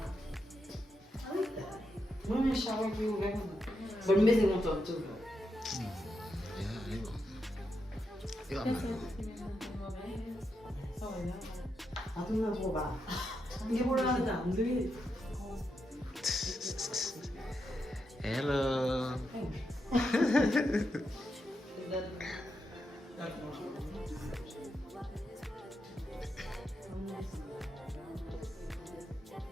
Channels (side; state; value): both; normal; correlation 0.84